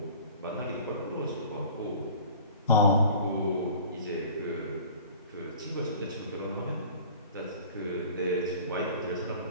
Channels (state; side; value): inverted; both; correlation -0.44